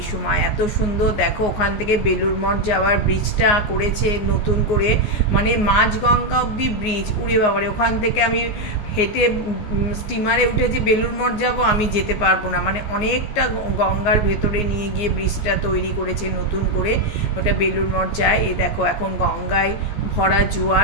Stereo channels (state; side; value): late; right; 14 ms